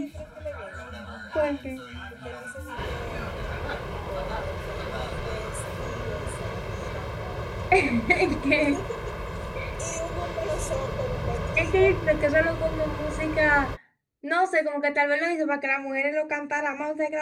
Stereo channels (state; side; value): identical; both; correlation 1.00